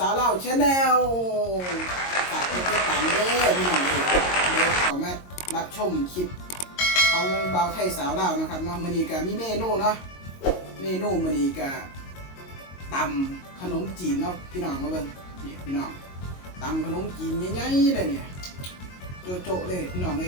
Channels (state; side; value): late; right; 22 ms